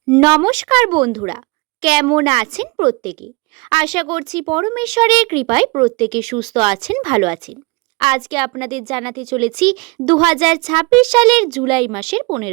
নমস্কার বন্ধুরা, কেমন আছেন প্রত্যেকে? আশা করছি পরমেশ্বরের কৃপায় প্রত্যেকে সুস্থ আছেন, ভালো আছেন। আজকে আপনাদের জানাতে চলেছি 2026 সালের জুলাই মাসের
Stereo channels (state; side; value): quieter; left; 26.4 dB